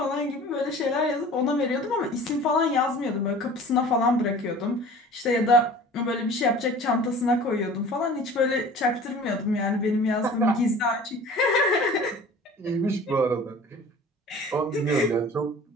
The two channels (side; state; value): both; normal; correlation 0.43